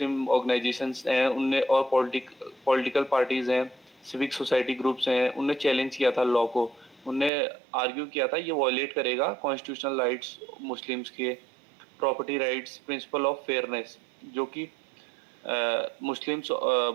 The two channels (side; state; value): left; drops out; at 7.3 s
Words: ऑर्गेनाइजेशंस हैं उनने और पॉलिटिकल पार्टीज हैं, सिविक सोसाइटी ग्रुप्स हैं, उनने चैलेंज किया था लॉ को. उनने आर्ग्यू किया था ये वायलेट करेगा कॉन्स्टिट्यूशनल राइट्स मुस्लिम्स के, property rights, principle of fairness, जो कि